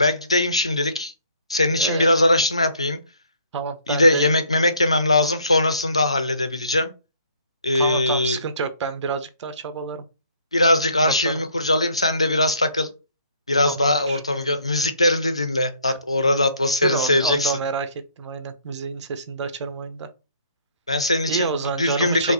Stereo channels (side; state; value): both; inverted; correlation -0.61